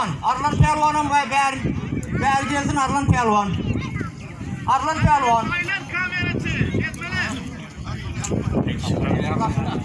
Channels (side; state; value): both; identical; correlation 1.00